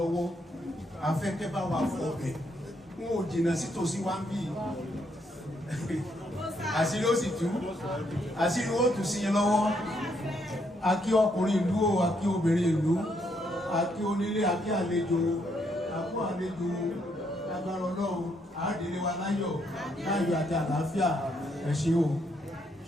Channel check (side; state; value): both; normal; correlation 0.74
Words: Afẹ́fẹ́ bá wa fọ ọbẹ̀, wọn ò jìnnà sí tòsí wá ń bì. Àṣírí ó sì tú, àṣírí ó tù sí yín lọ́wọ́. A kí ọkùnrin ìlú o, a kí obìnrin ìlú, a kí onílé, a kí àlejò, a kú àlejò. Agbára Ọlọ́run àádìrí wa láyọ̀ àti àlàáfíà. Ẹ ṣé o.